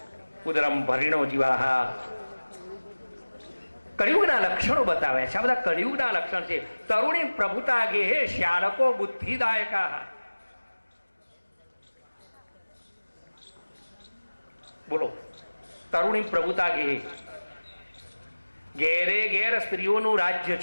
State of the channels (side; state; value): both; inverted; correlation -1.00